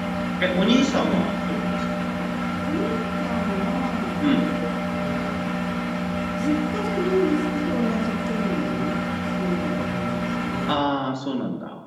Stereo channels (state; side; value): identical; both; correlation 1.00